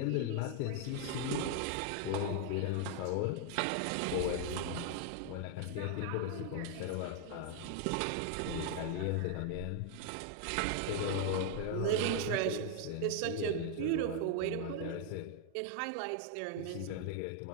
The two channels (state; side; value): different; both; correlation 0.00